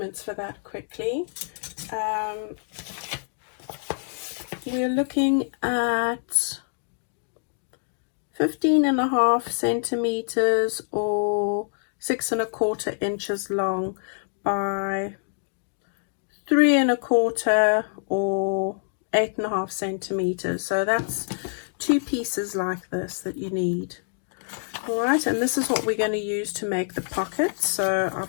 for that quickly. We're looking at 15.5 centimeters or 6.25 inches long by 3.25 or 8.5 centimeters. So that's 2 pieces like this that you need. All right, and this is what we're going to use to make the pockets. So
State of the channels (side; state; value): right; silent; 61 dB below the other